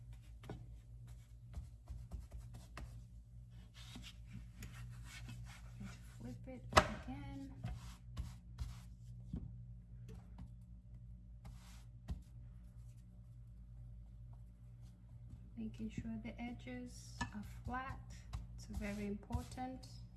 Flip it again. Making sure the edges are flat. It's very important.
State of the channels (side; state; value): both; identical; correlation 1.00